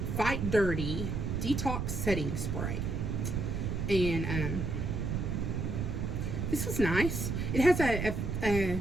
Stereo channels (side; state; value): right; noise; rumble, 1 dB below the sound